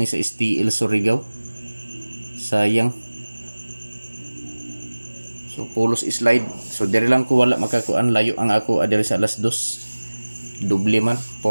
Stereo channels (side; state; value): both; inverted; correlation -1.00